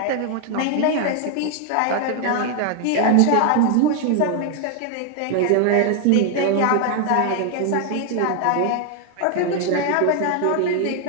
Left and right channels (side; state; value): both; different; correlation 0.00